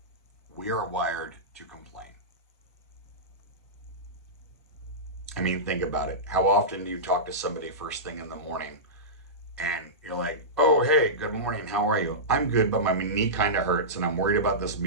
We are wired to complain. I mean, think about it. How often do you talk to somebody first thing in the morning and you're like, oh, hey, good morning. How are you? I'm good, but my knee kind of hurts and I'm worried about this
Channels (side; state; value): both; normal; correlation -0.17